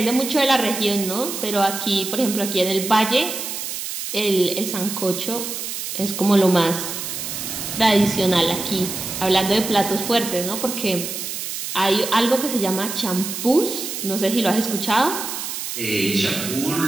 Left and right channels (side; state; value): right; noise; hiss, 6 dB below the sound